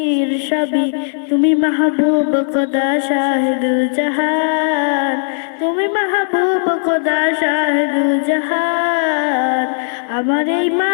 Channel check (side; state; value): right; silent; digital silence